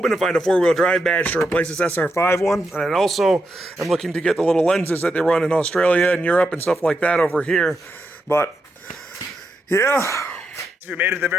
to find a 4-wheel drive badge to replace this SR5 one. And I also am looking to get the little lenses that they run in Australia and Europe and stuff like that over here. But yeah. If you made it to the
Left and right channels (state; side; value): normal; both; correlation 0.84